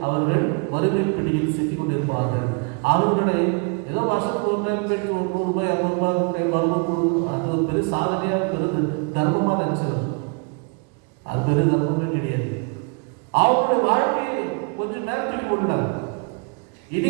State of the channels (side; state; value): left; quieter; 36.2 dB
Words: அவர்கள் வறுமை பிடியில் சிக்கிக் கொண்டிருப்பார்கள். அவர்களை ஏதோ வருஷத்துக்கு ஒரு ரூபாய் 100 ரூபாய் வரும், அது ஒரு பெரிய சாதனையாக பெருது தர்மமாக நினைச்சிடும். அது பெரிய தர்மமே கிடையாது. அவங்களுடைய வாழ்க்கையை கொஞ்சம் நேரத்தில் கொண்டார்.